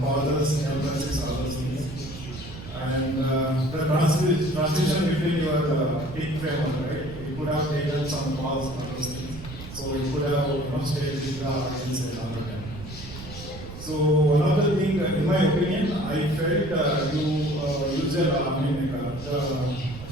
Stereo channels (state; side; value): noise; right; rumble, 13 dB below the sound